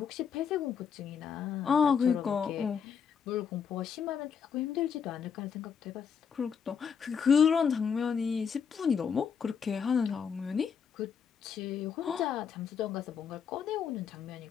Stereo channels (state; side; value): quieter; right; 6.9 dB